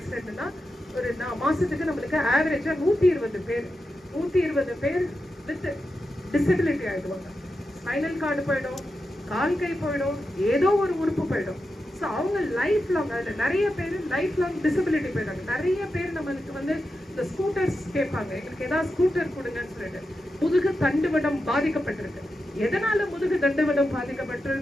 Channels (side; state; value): both; normal; correlation 0.89